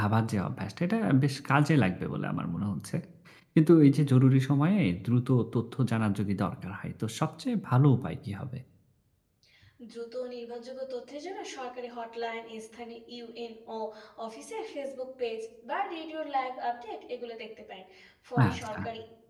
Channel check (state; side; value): identical; both; correlation 1.00